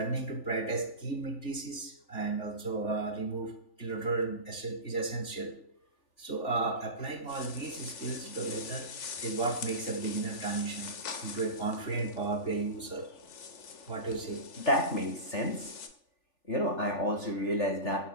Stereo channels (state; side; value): late; right; 3.4 ms